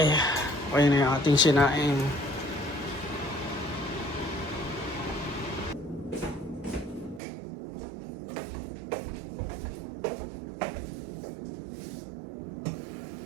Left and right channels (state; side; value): drops out; left; at 7.2 s